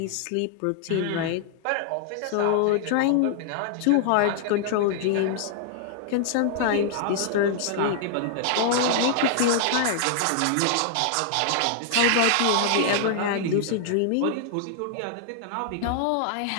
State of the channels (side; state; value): both; different; correlation -0.01